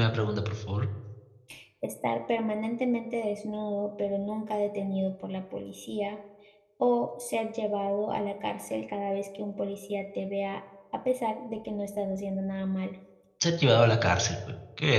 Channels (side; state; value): both; identical; correlation 1.00